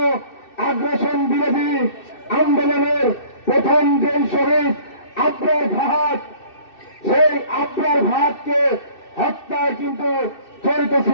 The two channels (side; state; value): right; late; 2.6 ms